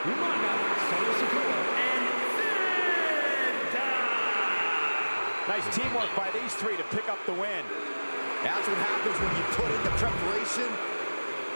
Umaga, Solo Sikoa, and Santa. Nice teamwork by these three to pick up the win. That's what happens when you put in the preparation.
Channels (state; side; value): inverted; both; correlation -1.00